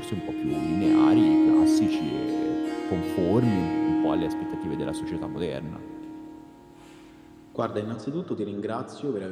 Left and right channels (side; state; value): both; identical; correlation 1.00